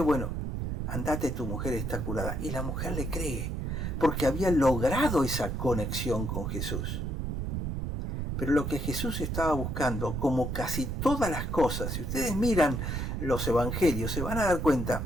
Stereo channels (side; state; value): right; noise; rumble, 2 dB below the sound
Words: bueno, andate, tu mujer está curada. Y la mujer le cree, porque había logrado esa conexión con Jesús. Pero lo que Jesús estaba buscando, como casi todas las cosas, si ustedes miran los evangelios, se van a dar cuenta